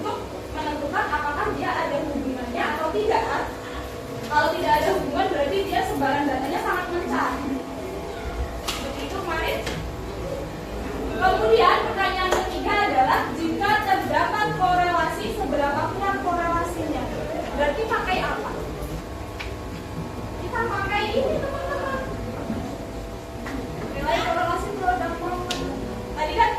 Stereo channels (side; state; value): both; identical; correlation 1.00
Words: menentukan apakah dia ada hubungannya atau tidak. Kalau tidak ada hubungan berarti dia sebaran datanya sangat mencar. Seperti itu kemarin. Kemudian pertanyaan ketiga adalah, jika terdapat korelasi, seberapa kuat korelasinya? Berarti pakai apa? Kita pakai ini, teman-teman. Nilai korelasi produk moment. Tadi kan